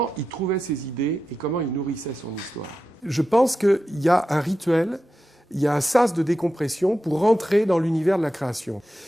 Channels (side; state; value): both; normal; correlation 0.90